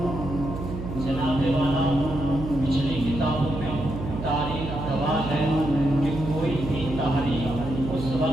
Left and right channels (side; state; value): right; noise; hum, 7 dB below the sound